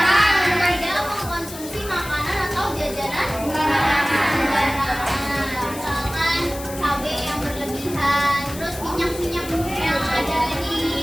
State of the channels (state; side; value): noise; left; hiss, 13 dB below the sound